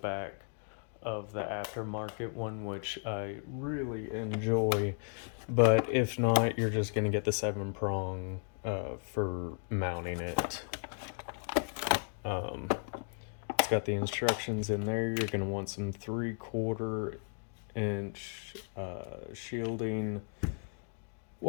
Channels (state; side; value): silent; right; 55 dB below the other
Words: of the aftermarket one, which I really enjoy. But if not, you're just going to get the 7-prong for mounting it. It's got the instructions in there. You're going to want some 3/4 inch shielding,